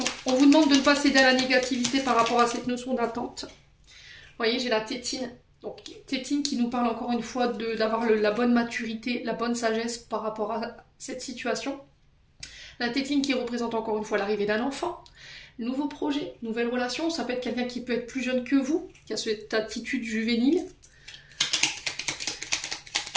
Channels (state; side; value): identical; both; correlation 1.00